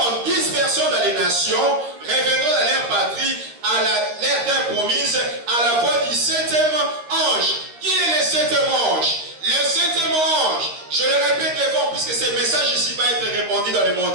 en 10 dispersion dans les nations, reviendront dans leur patrie, à leur terre promise, à la voix du septième ange. Qui est le septième ange? Le septième ange, je le répète devant, puisque ce message ici va être répandu dans le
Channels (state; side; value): late; left; 13 ms